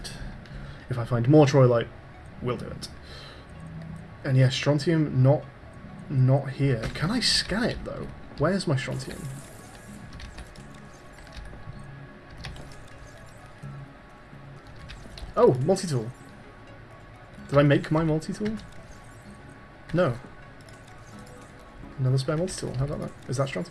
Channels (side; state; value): both; identical; correlation 1.00